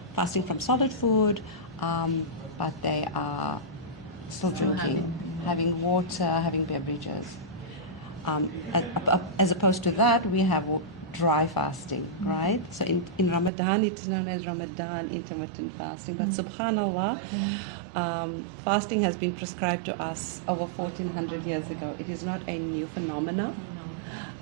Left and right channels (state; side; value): drops out; left; at 13.5 s